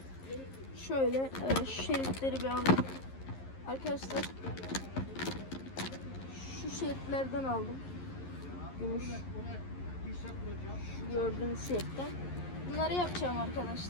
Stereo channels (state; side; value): late; right; 11 ms